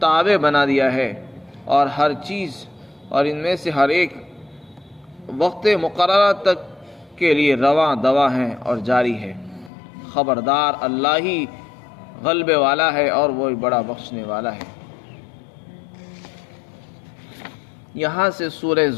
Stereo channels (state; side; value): drops out; right; at 9.7 s